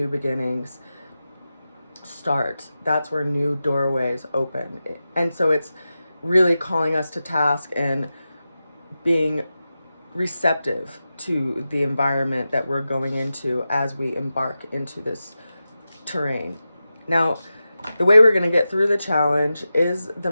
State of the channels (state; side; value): inverted; both; correlation -0.92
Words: beginnings start. That's where new doorways open. And so it's really calling us to task and being receptive to the environment that we're going into as we embark into this terrain. Now, the way we're going to get through the challenge is the